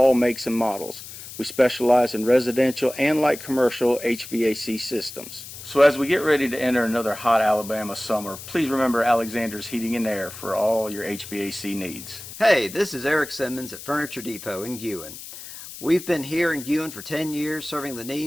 makes and models. We specialize in residential and light commercial HVAC systems. So as we get ready to enter another hot Alabama summer, please remember Alexander's Heating and Air for all your HVAC needs. Hey, this is Eric Simmons at Furniture Depot in Guin. We've been here in Guin for 10 years serving the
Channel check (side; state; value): left; noise; hiss, 13 dB below the sound